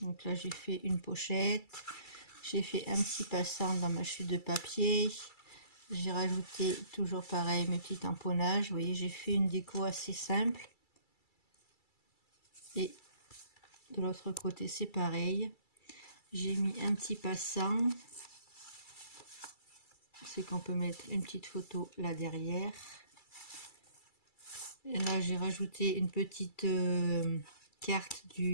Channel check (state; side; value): late; right; 2.3 ms